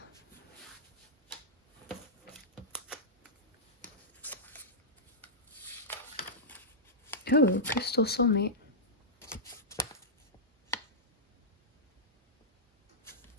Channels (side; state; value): both; normal; correlation -0.13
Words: Oh, crystal soulmate.